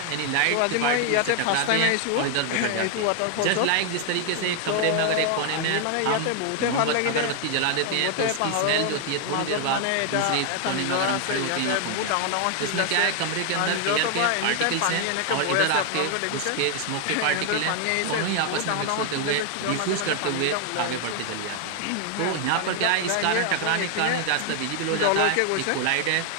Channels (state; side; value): different; both; correlation 0.00